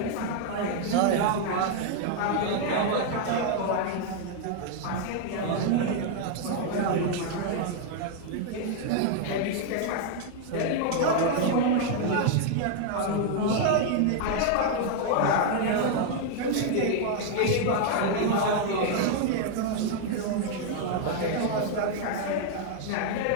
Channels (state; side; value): different; both; correlation 0.00